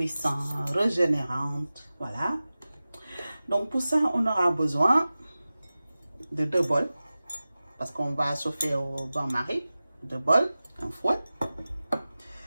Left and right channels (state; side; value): inverted; both; correlation -0.96